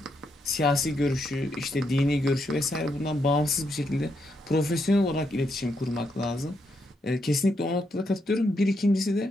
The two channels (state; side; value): normal; both; correlation 0.79